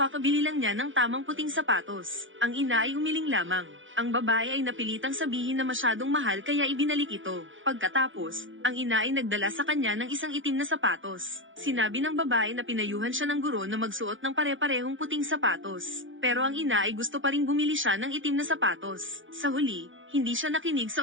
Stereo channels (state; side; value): late; left; 0.56 ms